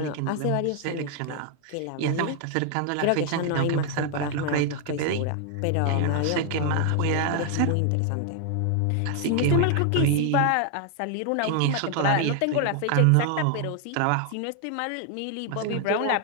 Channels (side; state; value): both; different; correlation 0.00